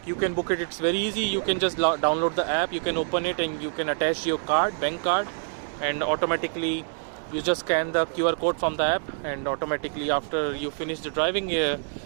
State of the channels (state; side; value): silent; left; digital silence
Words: you can book it. It's very easy. You can just download the app, you can open it, and you can attach your card, bank card, and automatically you just scan the QR code from the app, and automatically after you finish the driving,